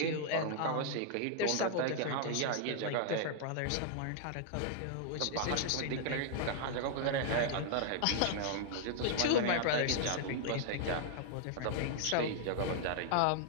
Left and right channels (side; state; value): both; different; correlation 0.00